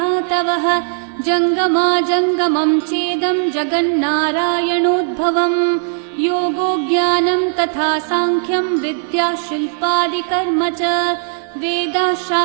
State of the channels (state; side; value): silent; left; 68 dB below the other